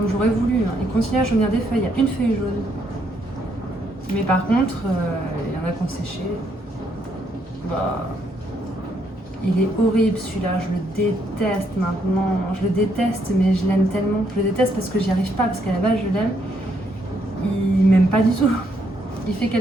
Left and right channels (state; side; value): normal; both; correlation 0.73